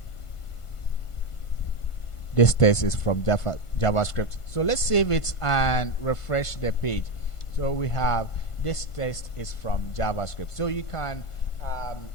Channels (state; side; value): late; right; 1.5 ms